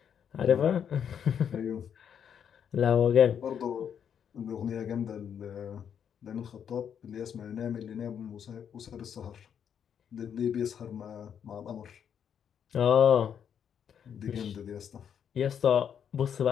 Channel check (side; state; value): right; quieter; 8.2 dB